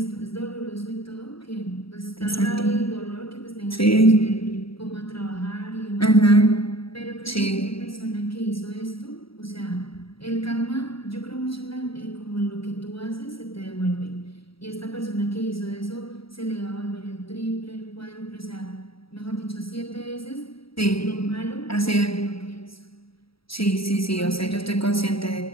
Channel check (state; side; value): late; right; 0.75 ms